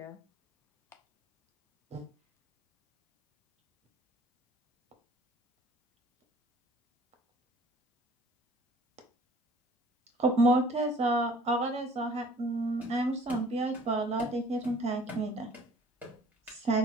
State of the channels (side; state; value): both; normal; correlation 0.53